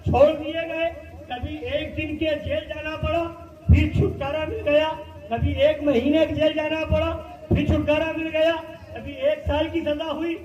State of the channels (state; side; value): identical; both; correlation 1.00